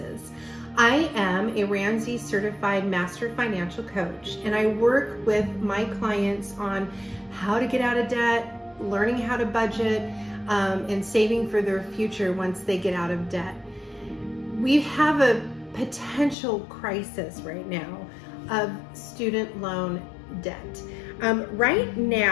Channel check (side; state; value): right; drops out; at 16.4 s